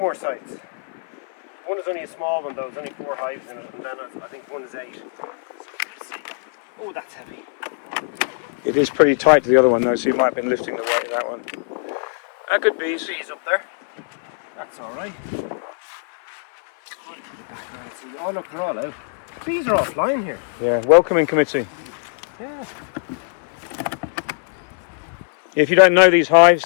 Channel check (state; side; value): silent; right; 57 dB below the other